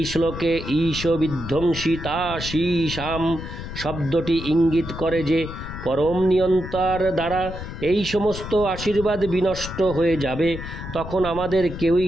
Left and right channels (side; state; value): left; noise; rumble, 9 dB below the sound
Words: শ্লোকে ঈশ বিধ্বংসিতা শীশাম শব্দটি ইঙ্গিত করে যে পরম নিয়ন্তার দ্বারা এই সমস্ত আশীর্বাদ বিনষ্ট হয়ে যাবে। তখন আমাদের